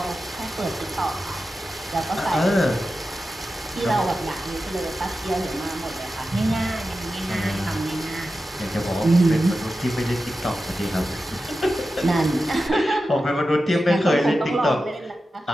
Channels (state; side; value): normal; both; correlation 0.92